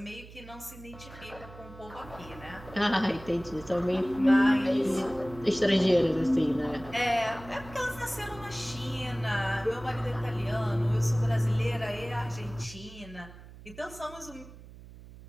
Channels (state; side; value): noise; right; hum, 18 dB below the sound